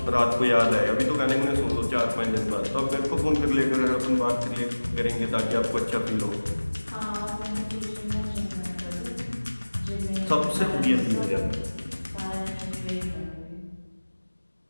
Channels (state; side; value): inverted; both; correlation -1.00